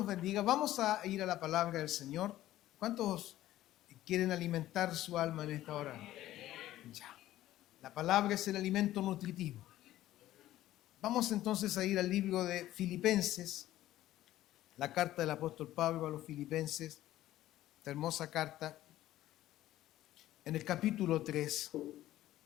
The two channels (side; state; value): right; quieter; 14.3 dB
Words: bendiga. Vamos a ir a la palabra del Señor. ¿Cuántos quieren alimentar su alma en esta hora? Ya. La palabra es el alimento nutritivo. Vamos entonces a ir al libro de Filipenses, la carta del apóstol Pablo a los Filipenses, esta hermosa carta, en el capítulo 3.